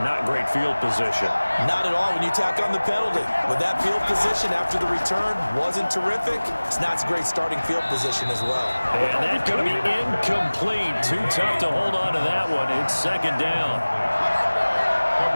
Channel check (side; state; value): both; inverted; correlation -1.00